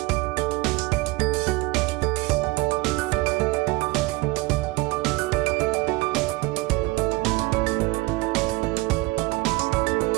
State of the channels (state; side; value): quieter; left; 22.5 dB